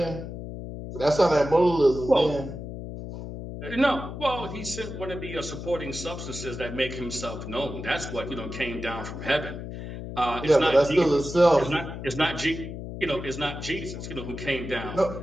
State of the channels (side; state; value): left; noise; hum, 8 dB below the sound